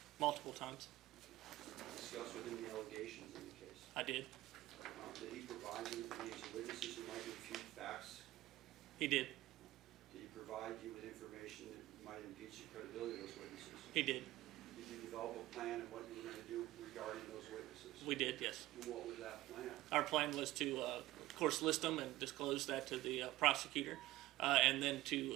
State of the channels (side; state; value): left; quieter; 16.7 dB